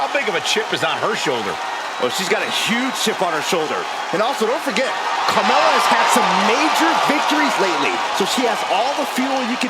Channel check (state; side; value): identical; both; correlation 1.00